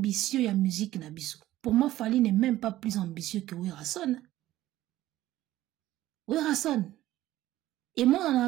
ya musique na biso. Pour moi, Fali n'est même pas plus ambitieux que Werason. Werason. Et moi, on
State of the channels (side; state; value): left; quieter; 14.9 dB